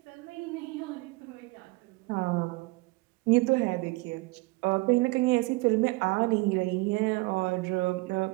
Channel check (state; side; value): quieter; left; 23.9 dB